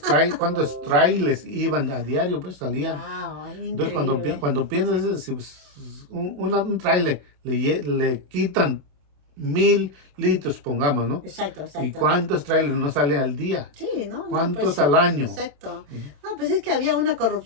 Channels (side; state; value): left; late; 27 ms